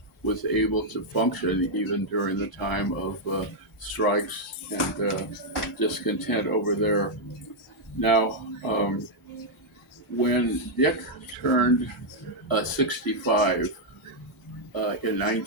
was able to function even during the time of strikes and discontent over there. Now, when Dick turned 65 in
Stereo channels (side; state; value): both; normal; correlation -0.02